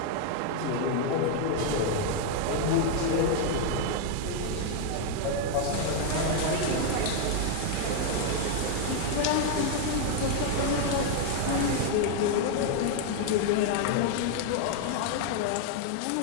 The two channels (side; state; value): both; different; correlation 0.00